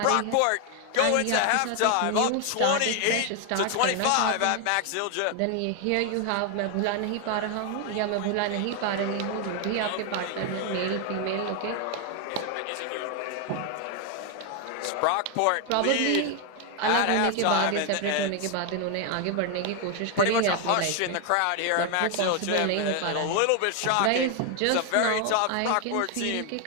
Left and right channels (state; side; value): different; both; correlation 0.01